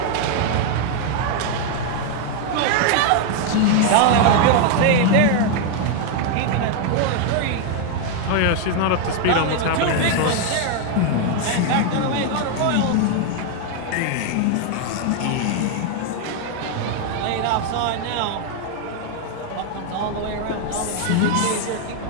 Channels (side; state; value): both; different; correlation 0.01